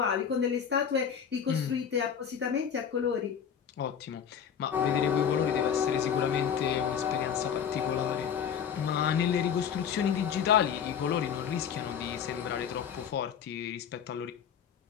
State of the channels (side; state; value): right; quieter; 7.9 dB